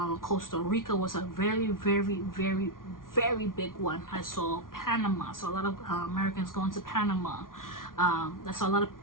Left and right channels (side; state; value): right; late; 0.90 ms